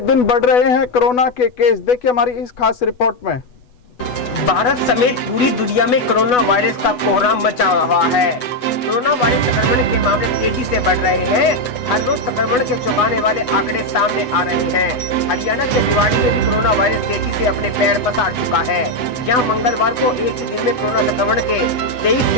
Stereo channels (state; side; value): late; right; 8.1 ms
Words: बढ़ रहे हैं कोरोना के केस। देखिए हमारी इस खास रिपोर्ट में। भारत समेत पूरी दुनिया में कोरोना वायरस का कोहराम मचा रहा है। कोरोना वायरस संक्रमण के मामले तेजी से बढ़ रहे हैं। हर रोज संक्रमण के चौंकाने वाले आंकड़े सामने आ रहे हैं। हरियाणा के रेवाड़ी में भी कोरोना वायरस तेजी से अपने पैर पसार चुका है। यहाँ मंगलवार को एक ही दिन में कोरोना संक्रमण के 23